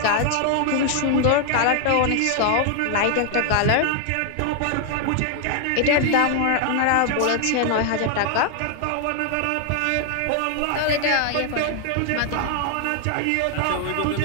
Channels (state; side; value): different; both; correlation 0.00